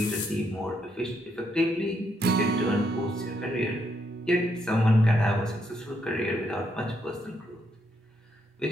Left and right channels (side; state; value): both; normal; correlation 0.76